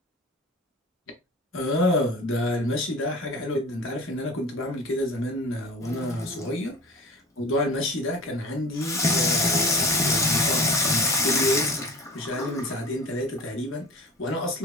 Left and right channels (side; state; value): both; normal; correlation 0.38